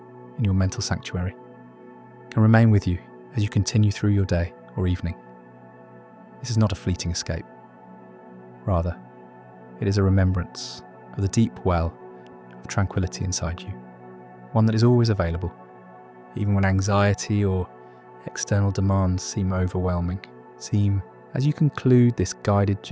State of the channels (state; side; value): identical; both; correlation 1.00